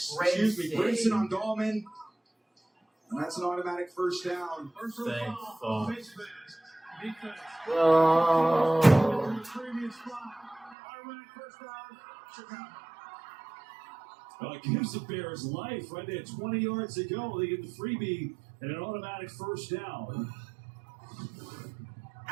on Dahlman. And that's an automatic first down. Thank fuck. Oh. Well, it gives the Bears life right there. 20 yards to go. They get the freebie and an automatic first down.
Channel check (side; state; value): left; drops out; at 10.8 s